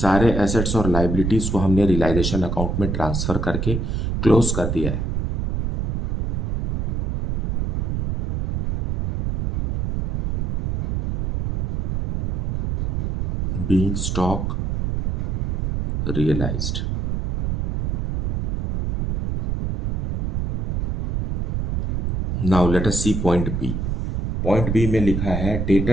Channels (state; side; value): noise; right; rumble, 1 dB below the sound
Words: एसेट्स और लाइबिलिटीज को हमने रियलाइजेशन अकाउंट में ट्रांसफर करके क्लोज कर दिया है। Being stock realised. Now let us see point B. Point B में लिखा है